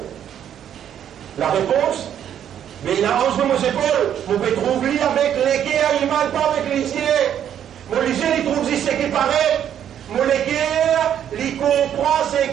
La réponse, mais il a 11 de mes épaules. Vous pouvez trouver avec les guerres, il ne mal pas avec les yeux. Mon lycée, il trouve ce qui paraît. Mon guerres, il comprend ce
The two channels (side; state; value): left; quieter; 9.7 dB